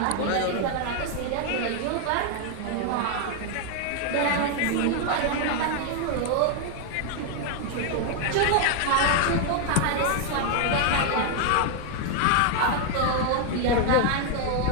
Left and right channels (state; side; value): different; both; correlation 0.00